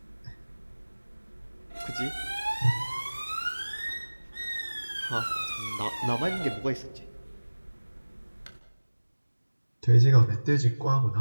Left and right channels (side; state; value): both; inverted; correlation -1.00